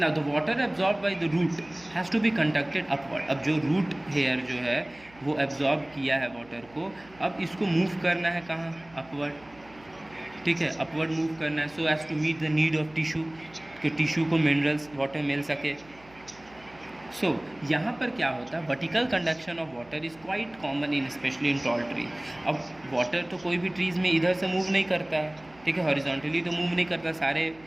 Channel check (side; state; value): right; noise; hum, 25 dB below the sound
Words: the water absorbed by the root has to be conducted upward। अब जो रूट हेयर जो है वो एब्जॉर्ब किया है वाटर को, अब इसको मूव करना है कहाँ, अपवर्ड। ठीक है, अपवर्ड मूव करना है, so as to meet the need of tissue, कि टिश्यू को मिनरल्स वाटर मिल सके। सो यहाँ पर क्या होता है, vertical conduction of water is quite common in especially in tall trees. अब वाटर तो कोई भी ट्रीज़ में इधर से मूव नहीं करता है, ठीक है, हॉरिजॉन्टली तो मूव नहीं करता, सारे